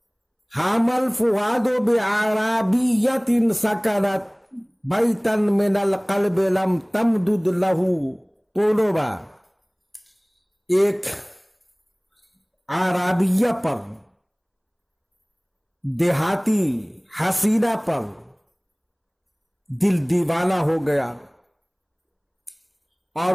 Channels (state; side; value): identical; both; correlation 1.00